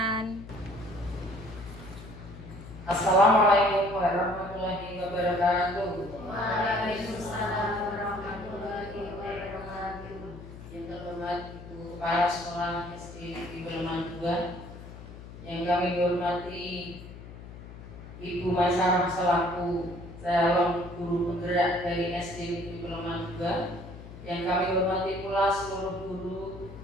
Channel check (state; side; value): noise; left; hum, 14 dB below the sound